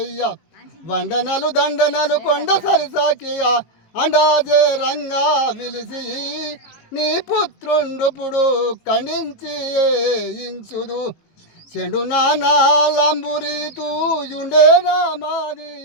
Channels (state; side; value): late; right; 19 ms